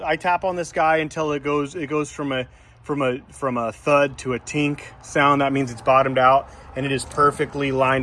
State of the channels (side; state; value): both; identical; correlation 1.00